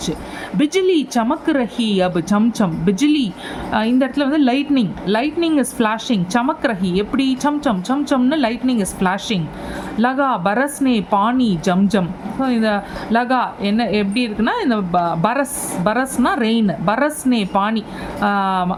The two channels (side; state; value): both; identical; correlation 1.00